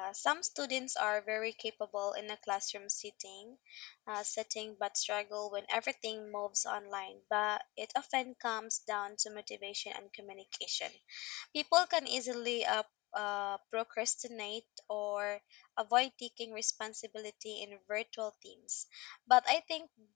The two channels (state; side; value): quieter; right; 22.1 dB